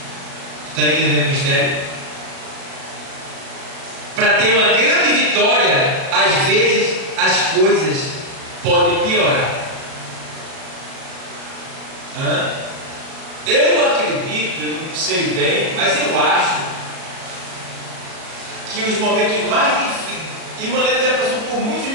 Está entendendo o mistério? Para ter uma grande vitória, às vezes as coisas podem piorar. Eu acredito, eu não sei bem, mas eu acho que os momentos mais difíceis, e Mané já passou por muitos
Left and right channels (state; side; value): late; left; 37 ms